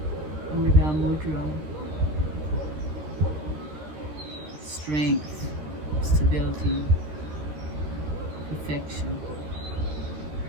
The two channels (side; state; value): left; late; 13 ms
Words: And with our mudra, strength, stability, perfection.